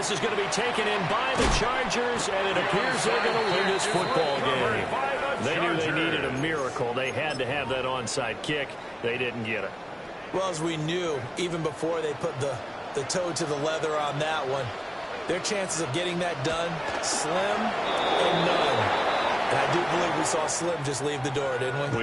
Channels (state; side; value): identical; both; correlation 1.00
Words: is going to be taken in by the Chargers, and it appears they're going to win this football game. They knew they needed a miracle. They had to have that onside kick. They didn't get it. Well, as we knew, even before they put the toe to the leather on that one, their chances of getting that done, slim and none. And I do believe we saw Slim just leave the door, didn't